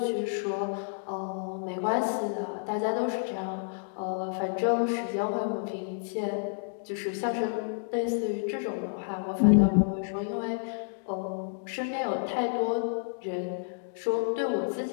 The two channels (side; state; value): right; silent; digital silence